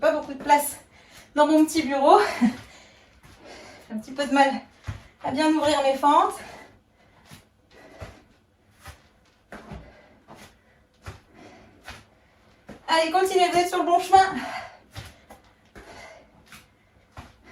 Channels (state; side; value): identical; both; correlation 1.00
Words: pas beaucoup de place dans mon petit bureau. J'ai un petit peu de mal à bien ouvrir mes fentes. Allez, continuez, vous êtes sur le bon chemin.